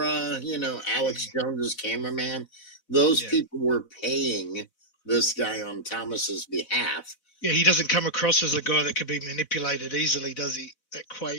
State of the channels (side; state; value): right; late; 3.6 ms